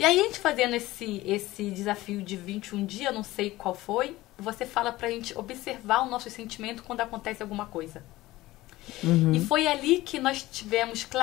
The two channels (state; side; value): quieter; right; 17.7 dB